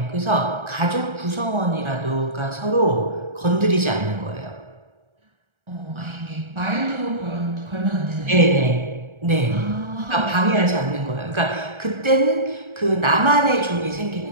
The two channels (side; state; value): left; late; 1.3 ms